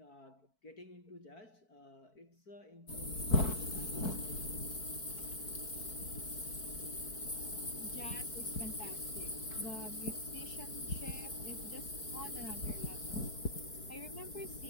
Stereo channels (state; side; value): late; right; 4.6 ms